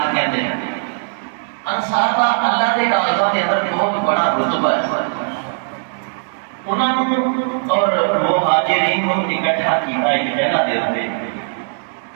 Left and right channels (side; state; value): left; silent; digital silence